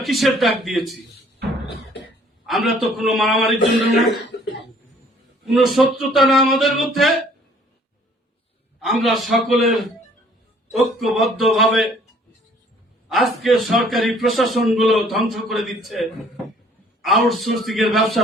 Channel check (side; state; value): both; normal; correlation 0.57